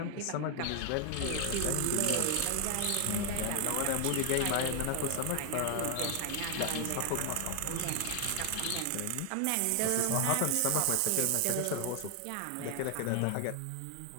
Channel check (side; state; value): both; different; correlation 0.00